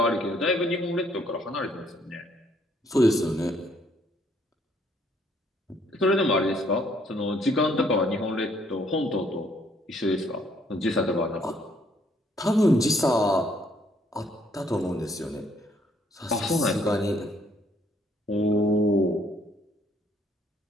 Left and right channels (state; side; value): normal; both; correlation 0.66